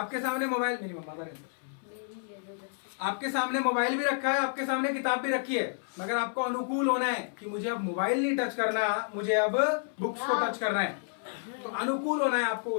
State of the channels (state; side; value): silent; right; 58 dB below the other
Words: सामने मोबाइल, मेरी मम्मा का आपके सामने मोबाइल भी रखा है, आपके सामने किताब भी रखी है, मगर आपको अनुकूल होना है कि मुझे अब मोबाइल नहीं टच करना, मुझे अब बुक्स को टच करना है। तो अनुकूल होना है आपको